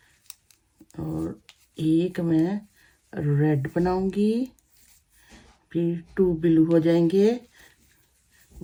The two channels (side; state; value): both; identical; correlation 1.00